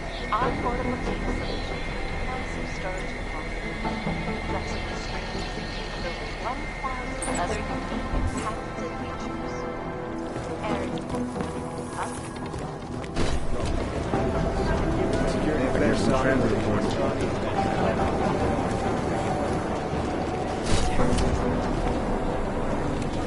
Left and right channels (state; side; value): identical; both; correlation 1.00